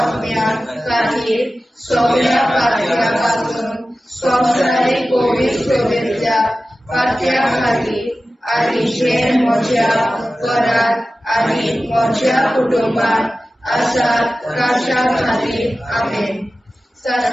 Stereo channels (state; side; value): normal; both; correlation 0.95